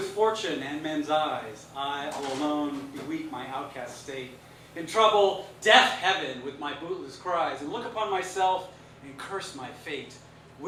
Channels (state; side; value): identical; both; correlation 1.00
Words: fortune and men's eyes, I all alone beweep my outcast state. In trouble, deaf heaven with my bootless cries, and look upon myself and curse my fate,